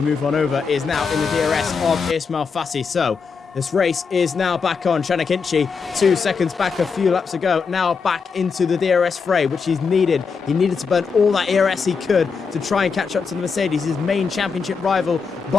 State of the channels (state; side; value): quieter; right; 5.4 dB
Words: move on over, is now in the DRS of Ismail Fassi. So this race is now back on. Chanakinchi, 2 seconds back a few laps ago, now back into the DRS fray, which he's needed. He needed to burn all that ERS he could to try and catch up to the Mercedes, his main championship rival,